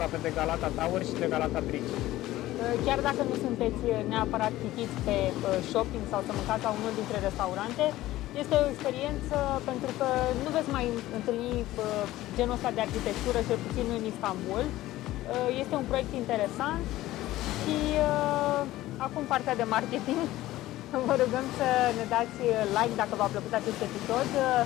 de Galata Tower și de Galata Bridge. Chiar dacă nu sunteți neapărat chitiți pe shopping sau să mâncați la unul dintre restaurante, este o experiență pentru că nu veți mai întâlni genul ăsta de arhitectură, cel puțin în Istanbul. Este un proiect interesant și acum partea de marketing. Vă rugăm să ne dați like dacă v-a plăcut acest episod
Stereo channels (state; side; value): quieter; right; 15.9 dB